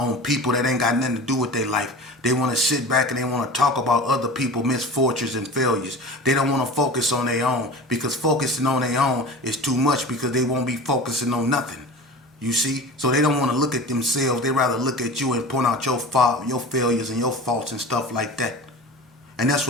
people that ain't got nothing to do with their life. They want to sit back and they want to talk about other people's misfortunes and failures. They don't want to focus on their own, because focusing on their own is too much, because they won't be focusing on nothing. You see? So they don't want to look at themselves. They rather look at you and point out your fault, your failures and your faults and stuff like that. And that's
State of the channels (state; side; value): normal; both; correlation 0.35